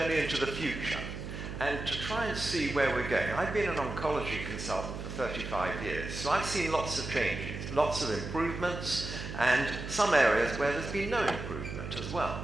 into the future and to try and see where we're going. I've been an oncology consultant for 35 years, so I've seen lots of changes, lots of improvements, and some areas where there's been no improvement as well.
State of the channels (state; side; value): noise; right; hum, 7 dB below the sound